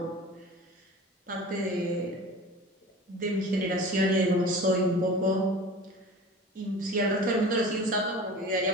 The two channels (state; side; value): normal; both; correlation 0.38